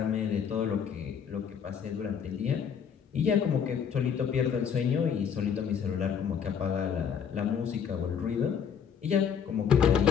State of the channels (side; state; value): right; quieter; 7.5 dB